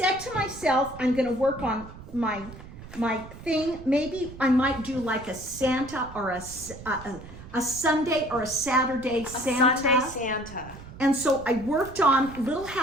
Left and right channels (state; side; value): noise; right; rumble, 15 dB below the sound